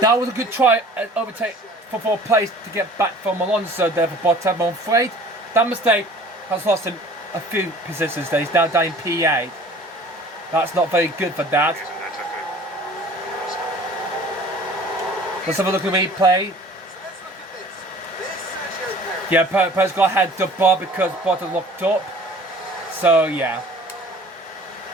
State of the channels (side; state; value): both; normal; correlation 0.48